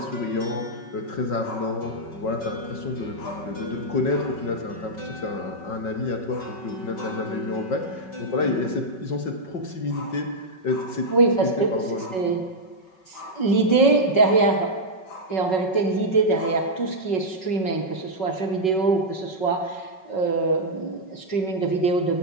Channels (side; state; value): right; late; 5.4 ms